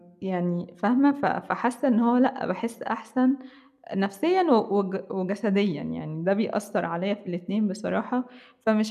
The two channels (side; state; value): both; identical; correlation 1.00